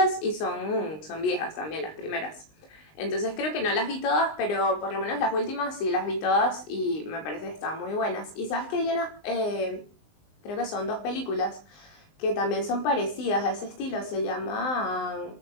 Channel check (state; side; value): late; right; 19 ms